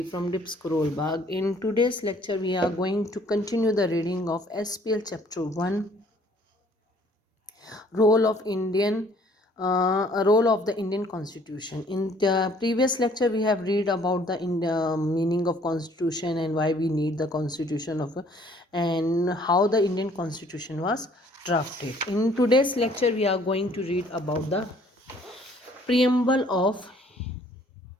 from Dips Bag. In today's lecture, we are going to continue the reading of SPL Chapter 1, Role of Role of the Indian Constitution. In the previous lecture, we have read about the meaning of Constitution and why we need the Constitution and how the Indian Constitution was drafted. In today's lecture, we are going to read about the preamble of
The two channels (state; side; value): normal; both; correlation 0.59